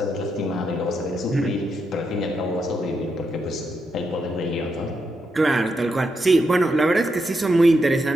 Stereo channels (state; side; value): normal; both; correlation 0.82